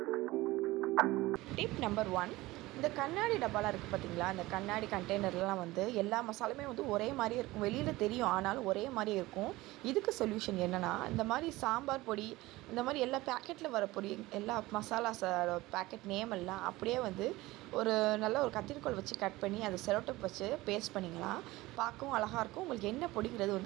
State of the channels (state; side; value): quieter; left; 19.3 dB